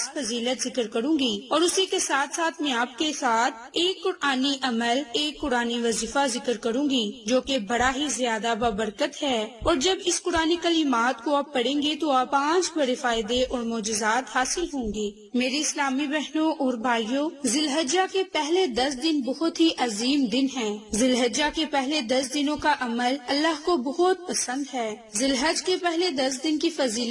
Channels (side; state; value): both; identical; correlation 1.00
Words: فضیلت ذکر کروں گی، اور اسی کے ساتھ ساتھ میں آپ کے ساتھ ایک قرآنی عمل، ایک قرآنی وظیفہ ذکر کروں گی جو کہ بڑا ہی زیادہ بابرکت ہے، اور جب اس قرآنی کلمات کو آپ پڑھیں گے تو آپ 5 بڑے فائدے اور معجزات حاصل ہوں گے۔ میری اسلامی بہنوں اور بھائیوں، ذی الحجہ کے پہلے 10 دن بہت ہی عظیم دن ہیں۔ ذی الحجہ کے پہلے 10 دنوں کا عمل اللہ کو بہت پسند ہے۔ ذی الحج کے پہلے 10 دن کی